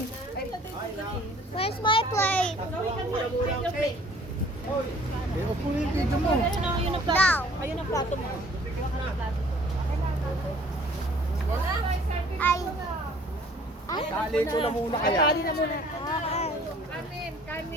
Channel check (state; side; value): normal; both; correlation 0.54